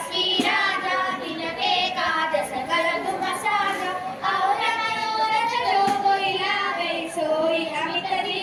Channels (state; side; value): identical; both; correlation 1.00